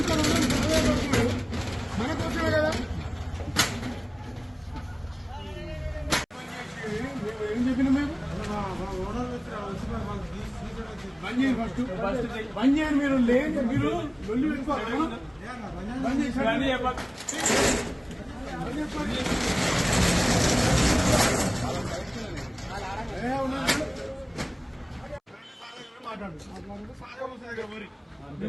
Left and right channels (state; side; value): identical; both; correlation 1.00